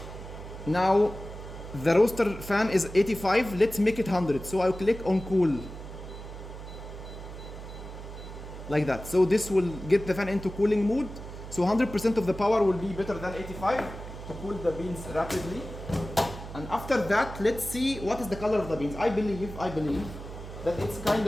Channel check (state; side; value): noise; right; hum, 11 dB below the sound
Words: now the roaster fan is 85. Let's make it 100. So I'll click on cool. Like that. So this will get the fan into cooling mode. So 100% of the power will be better than 85 to cool the beans rapidly. And after that, let's see what is the color of the beans. I believe that it's kind